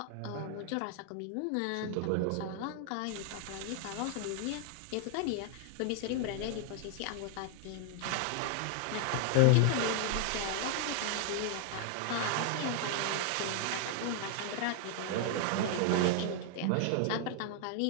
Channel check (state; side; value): different; both; correlation -0.01